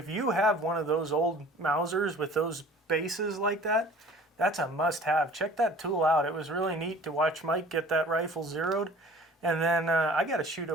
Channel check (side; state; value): both; normal; correlation 0.47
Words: you have one of those old Mausers with those bases like that, that's a must-have. Check that tool out. It was really neat to watch Mike get that rifle zeroed. And then I got to shoot a